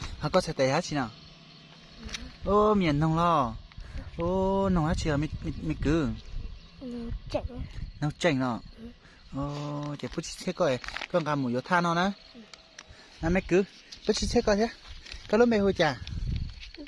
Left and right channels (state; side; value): identical; both; correlation 1.00